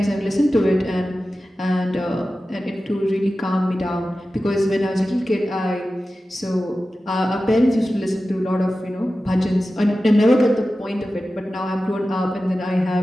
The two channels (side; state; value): both; normal; correlation 0.94